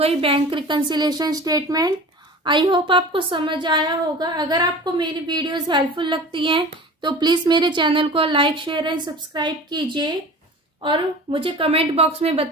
bank reconciliation statement. I hope आपको समझ आया होगा। अगर आपको मेरी वीडियोस हेल्पफुल लगती हैं तो प्लीज़ मेरे चैनल को लाइक शेयर एंड सब्सक्राइब कीजिए और मुझे कमेंट बॉक्स में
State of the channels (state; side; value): normal; both; correlation 0.38